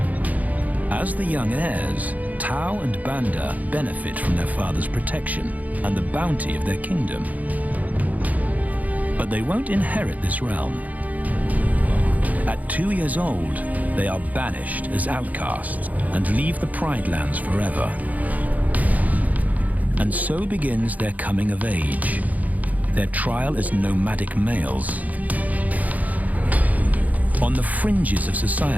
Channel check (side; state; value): left; late; 0.077 ms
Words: As the young heirs, Tao and Banda benefit from their father's protection and the bounty of their kingdom. But they won't inherit this realm. At 2 years old, they are banished as outcasts and leave the Pride lands forever. And so begins their coming of age, their trial as nomadic males. On the fringes of